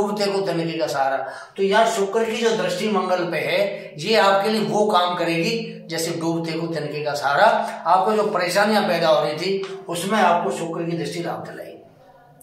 को तिनके का सहारा। तो यार शुक्र की जो दृष्टि मंगल पे है, ये आपके लिए वो काम करेगी जैसे डूबते को तिनके का सहारा। आपको जो परेशानियां पैदा हो रही थी उसमें आपको शुक्र की दृष्टि लाभ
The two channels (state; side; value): identical; both; correlation 1.00